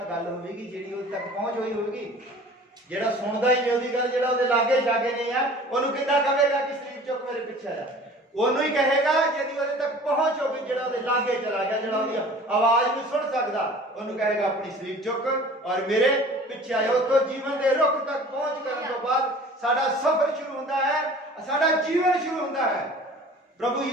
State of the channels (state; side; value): normal; both; correlation 0.45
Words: ਗੱਲ ਹੋਵੇਗੀ, ਜਿਹੜੀ ਉਹਦੇ ਤੱਕ ਪਹੁੰਚ ਹੋਈ ਹੋਵੇਗੀ। ਜਿਹੜਾ ਸੁਣਦਾ ਹੀ ਨਹੀਂ ਉਹਦੀ ਗੱਲ, ਜਿਹੜਾ ਉਹਦੇ ਲਾਗੇ ਜਾਗੇ ਨਹੀਂ ਆ, ਉਹਨੂੰ ਕਿੱਦਾਂ ਕਹੇਗਾ ਕਿ ਸਲੀਬ ਚੁੱਕ ਮੇਰੇ ਪਿੱਛੇ ਆ ਜਾ? ਉਹਨੂੰ ਹੀ ਕਹੇਗਾ ਜਿਹਦੀ ਉਹਦੇ ਤੱਕ ਪਹੁੰਚ ਹੋਵੇ, ਜਿਹੜਾ ਉਹਦੇ ਲਾਗੇ ਚਲਾ ਗਿਆ, ਜਿਹੜਾ ਉਹਦੀ ਆਵਾਜ਼ ਨੂੰ ਸੁਣ ਸਕਦਾ, ਉਹਨੂੰ ਕਹੇਗਾ ਆਪਣੀ ਸਲੀਬ ਚੁੱਕ ਔਰ ਮੇਰੇ ਪਿੱਛੇ ਆਇਆ। ਉੱਥੋਂ ਜੀਵਨ ਦੇ ਰੁੱਖ ਤੱਕ ਪਹੁੰਚ ਕਰਨ ਤੋਂ ਬਾਅਦ ਸਾਡਾ ਸਫ਼ਰ ਸ਼ੁਰੂ ਹੁੰਦਾ ਹੈ, ਸਾਡਾ ਜੀਵਨ ਸ਼ੁਰੂ ਹੁੰਦਾ ਹੈ। ਪ੍ਰਭੂ